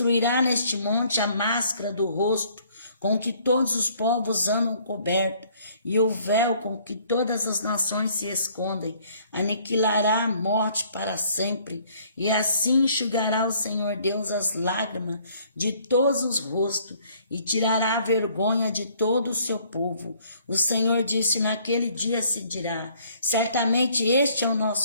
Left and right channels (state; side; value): inverted; both; correlation -0.61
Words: neste monte a máscara do rosto, com que todos os povos andam cobertos, e o véu com que todas as nações se escondem. Aniquilará a morte para sempre, e assim enxugará o Senhor Deus as lágrimas de todos os rostos, e tirará a vergonha de todo o seu povo. O Senhor disse: naquele dia se dirá: certamente este é o